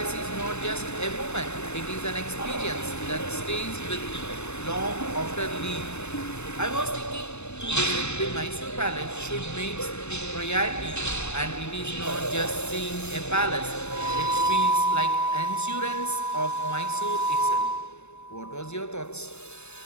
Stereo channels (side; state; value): right; late; 0.81 ms